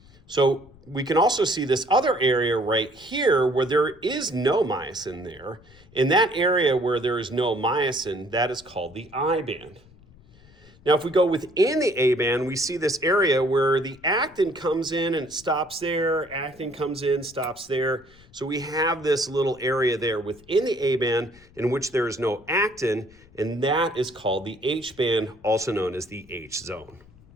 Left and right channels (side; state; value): left; noise; rumble, 26 dB below the sound